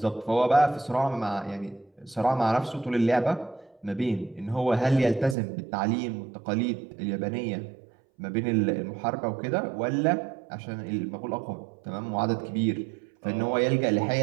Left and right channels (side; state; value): left; drops out; at 5.4 s